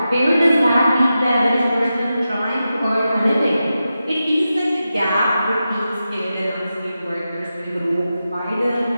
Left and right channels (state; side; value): inverted; both; correlation -0.91